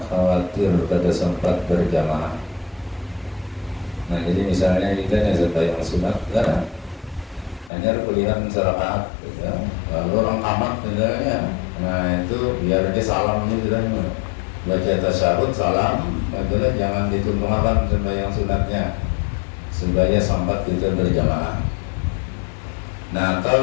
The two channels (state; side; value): drops out; right; at 7.7 s